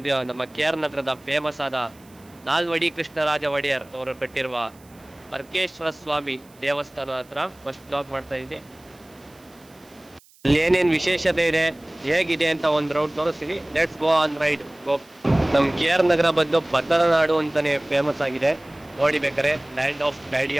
ನಮ್ಮ ಕೆ ಆರ್ ನಗರದ ಫೇಮಸ್ ಆದ ನಾಲ್ವಡಿ ಕೃಷ್ಣರಾಜ ಒಡೆಯರ್ ಅವರು ಕಟ್ಟಿರುವ ಅರ್ಕೇಶ್ವರ ಸ್ವಾಮಿ ದೇವಸ್ಥಾನ ಹತ್ರ ಫಸ್ಟ್ ಬ್ಲಾಗ್ ಮಾಡ್ತಾ ಇದ್ದೀನಿ. ಅಲ್ಲಿ ಏನೇನು ವಿಶೇಷತೆ ಇದೆ, ಹೇಗಿದೆ ಅಂತ ಒಂದು ರೌಂಡ್ ತೋರಿಸ್ತೀನಿ. Let's go on ride. Go. ನಮ್ಮ ಕೆ ಆರ್ ನಗರ ಬಂದು ಬದರ ನಾಡು ಅಂತಾನೆ ಫೇಮಸ್ ಆಗಿದೆ. ನೋಡಿ ಬೇಕಾರೆ, land of daddy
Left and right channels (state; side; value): noise; right; hiss, 28 dB below the sound